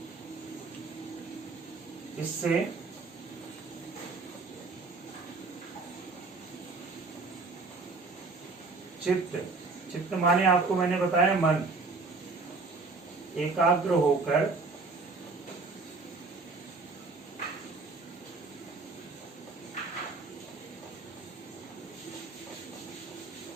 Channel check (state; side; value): quieter; left; 3.9 dB